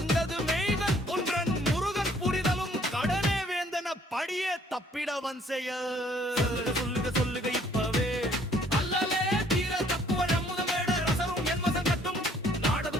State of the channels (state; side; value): normal; both; correlation 0.61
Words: மெய்கன் ஒன்றன் முருகன் புரிதலும் கடனே வேந்தன படியே தப்பிடவன் செய்ய சொல்லுக இப்பவே அல்லலே தீர தப்புவ நம்முதமேட ரசரும் என்மசம் கட்டும் நாடது